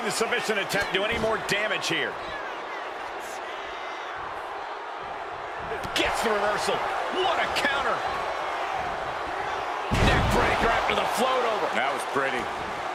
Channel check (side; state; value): both; identical; correlation 1.00